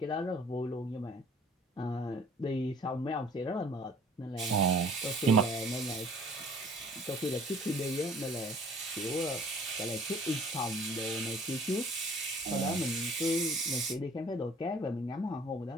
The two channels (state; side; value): normal; both; correlation 0.52